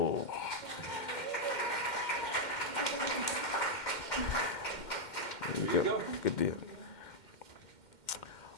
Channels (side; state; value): right; late; 2.1 ms